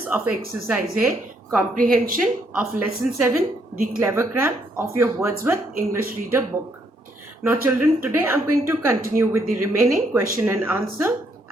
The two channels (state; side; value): normal; both; correlation 0.72